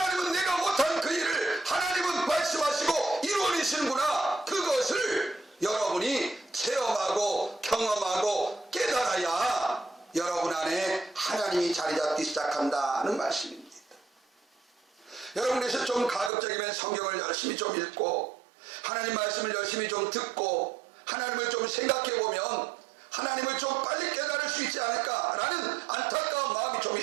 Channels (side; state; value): left; drops out; at 16.3 s